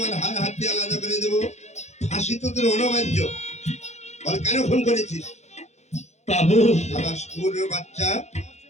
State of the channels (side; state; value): right; late; 0.33 ms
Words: হাড় হাড্ডি আলাদা করে দেবো, ফাঁসি তো তোর অনবার্য। বল কেন খুন করেছিস? বাবু, শালা স্কুলের বাচ্চা,